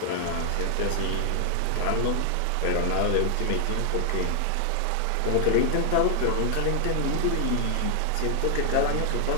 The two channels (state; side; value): different; both; correlation 0.00